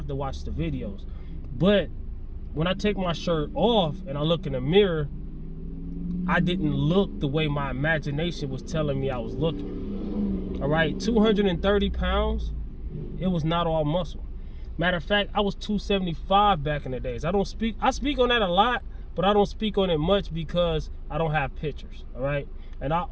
to watch the videos. But when I take my shirt off and I look in the mirror, I didn't look the way my imagination was telling me I was looking. All right, 230 pounds, it was not all muscle. Matter of fact, I was 275 back in the days. I speak on that a lot, but I don't speak on it much because I don't have pictures, all right? And I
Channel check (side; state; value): both; identical; correlation 1.00